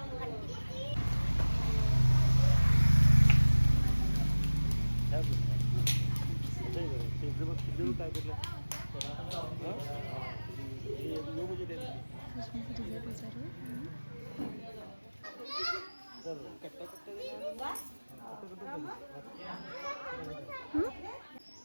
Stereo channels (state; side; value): inverted; both; correlation -1.00